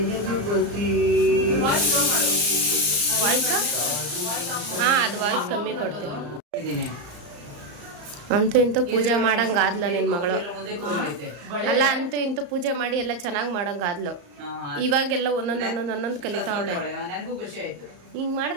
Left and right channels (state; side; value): late; left; 34 ms